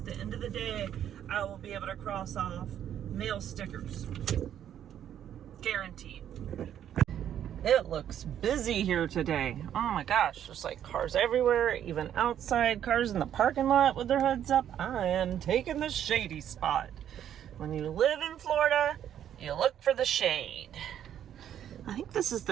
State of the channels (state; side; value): quieter; left; 10.1 dB